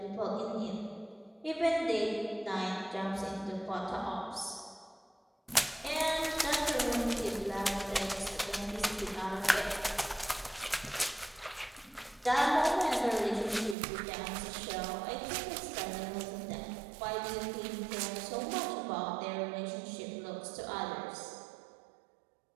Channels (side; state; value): left; drops out; at 13.8 s